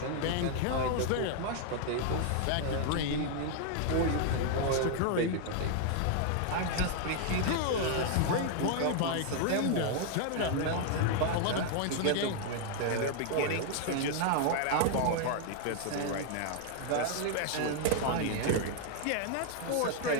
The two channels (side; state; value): both; different; correlation 0.00